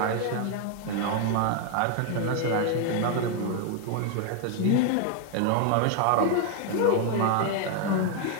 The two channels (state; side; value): different; both; correlation 0.01